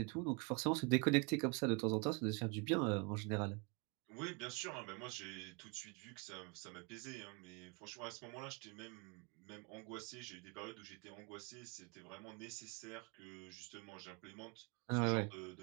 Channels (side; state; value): left; quieter; 30.5 dB